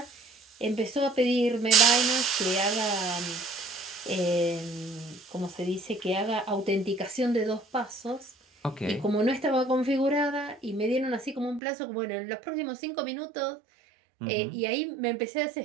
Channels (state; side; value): drops out; left; at 11.6 s